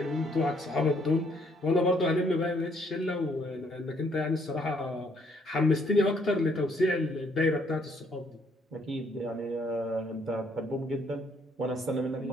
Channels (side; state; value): both; normal; correlation 0.68